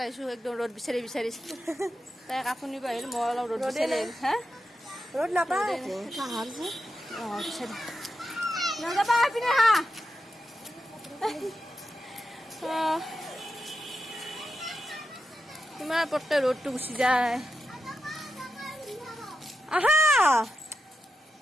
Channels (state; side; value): normal; both; correlation 0.88